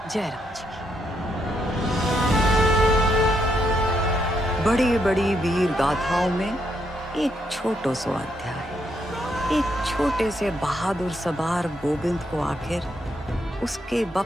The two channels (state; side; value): normal; both; correlation 0.77